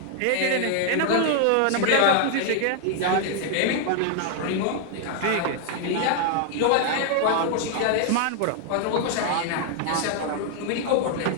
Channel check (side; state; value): both; different; correlation 0.00